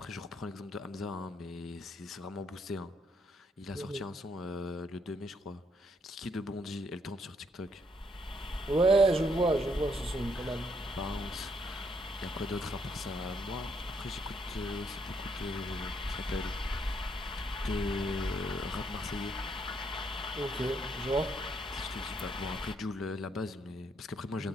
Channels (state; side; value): normal; both; correlation 0.73